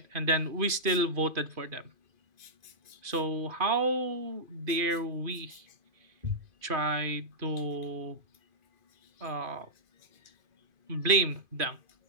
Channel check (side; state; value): left; late; 2.5 ms